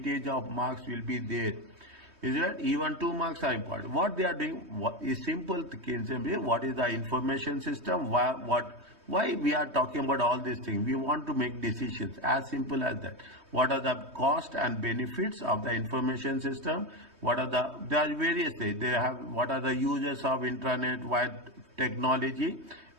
of marks will be there. Is it even 2 marks are important? What they are doing is simple. What is the information system? Why we are talking about all these things? We want to make decisions, as simple as that. What are the cost and benefits of the information system? What are there are various things. They have what are the uses of intranet, wide technology.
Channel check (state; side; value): late; left; 3.2 ms